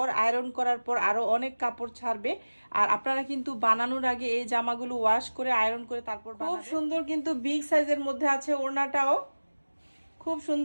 আয়রন করার পর আরো অনেক কাপড় ছাড়বে। আর আপনারা কিন্তু বানানোর আগে এই জামাগুলো ওয়াশ করে আয়রন করে তারপর খুব সুন্দর, কিন্তু বিগ সাইজের মধ্যে আছে ওড়নাটাও। খুব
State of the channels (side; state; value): both; inverted; correlation -1.00